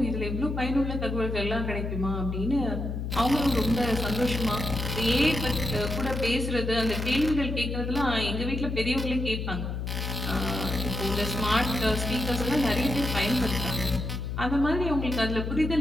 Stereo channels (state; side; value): noise; left; hum, 3 dB below the sound